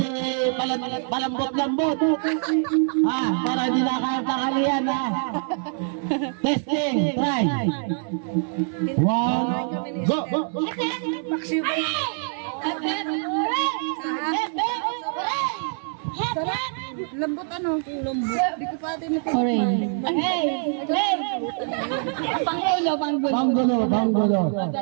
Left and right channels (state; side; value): silent; left; 62 dB below the other